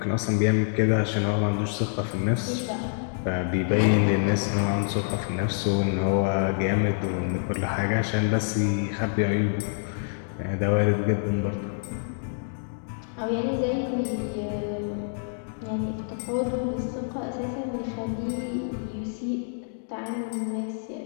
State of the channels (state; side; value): silent; right; digital silence